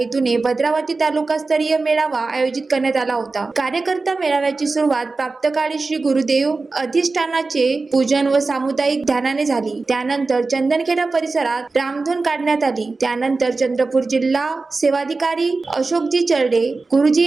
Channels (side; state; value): left; quieter; 3.8 dB